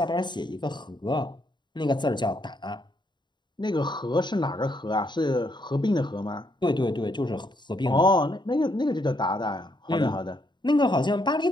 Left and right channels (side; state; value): right; late; 0.22 ms